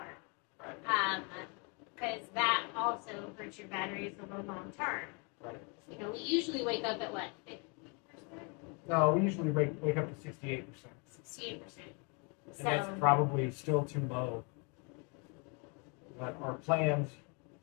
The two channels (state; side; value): quieter; right; 34.0 dB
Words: Right. Because that also hurts your batteries in the long term. Right. We usually wake up at what, 50%? No, we usually wake up to 68%. 68%. And that's probably still too low. But our plans